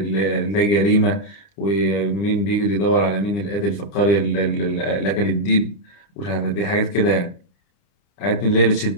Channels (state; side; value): late; right; 30 ms